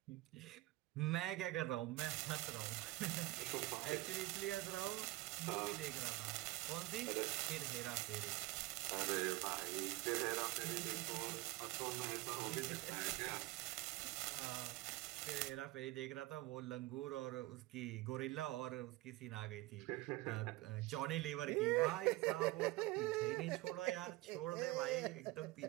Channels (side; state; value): left; quieter; 19.4 dB